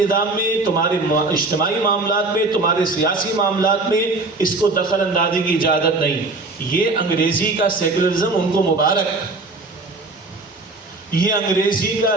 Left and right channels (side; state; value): left; quieter; 3.3 dB